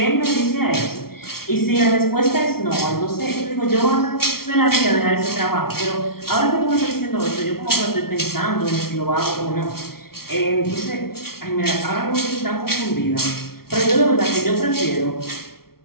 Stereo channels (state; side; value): late; right; 0.94 ms